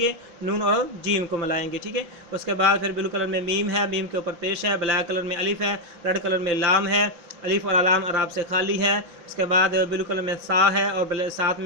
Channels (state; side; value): late; left; 5.9 ms